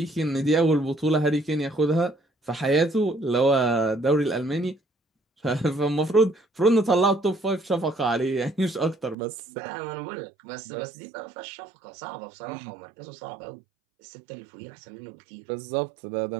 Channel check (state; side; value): drops out; left; at 9.2 s